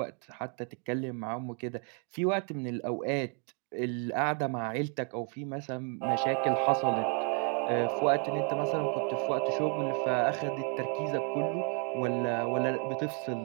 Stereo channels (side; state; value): left; quieter; 38.1 dB